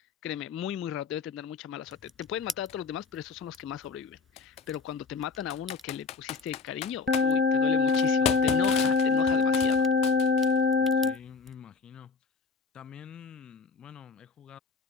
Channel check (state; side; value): quieter; right; 4.9 dB